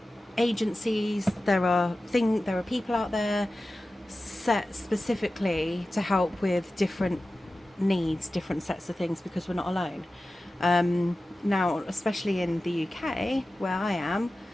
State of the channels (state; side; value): normal; both; correlation 0.95